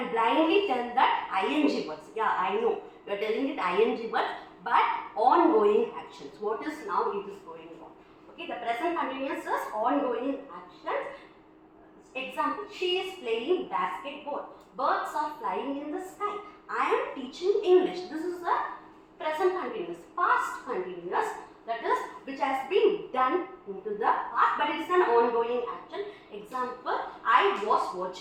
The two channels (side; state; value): both; identical; correlation 1.00